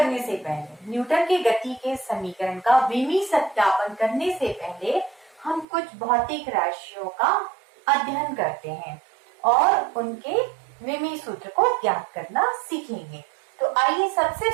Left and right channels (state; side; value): drops out; left; at 5.7 s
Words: से पहले, न्यूटन के गति के समीकरण का विमीय सत्यापन करने से पहले हम कुछ भौतिक राशियों का अध्ययन करते हैं और उनके विमीय सूत्र को ज्ञात करना सीखेंगे। तो आइए सबसे